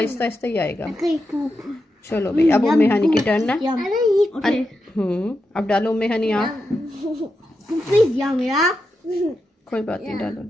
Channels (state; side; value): normal; both; correlation 0.87